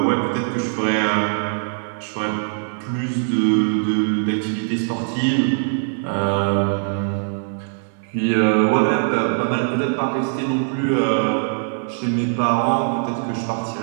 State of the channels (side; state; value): left; silent; digital silence